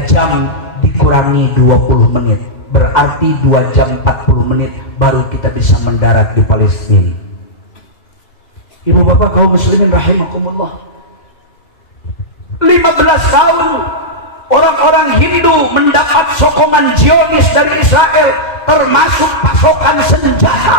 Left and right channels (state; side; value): late; right; 2.0 ms